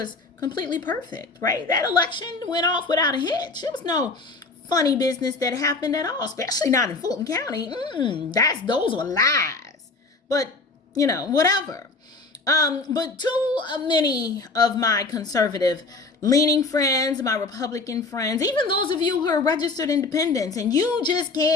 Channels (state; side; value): quieter; right; 3.8 dB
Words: completely perfect, right? That election went off without a hitch. There was no funny business that happened at all, especially not in Fulton County. Those were lies. But, whatever. But too many of my conservative leaning friends, my Republican friends, even those of you who are registered independents, and you just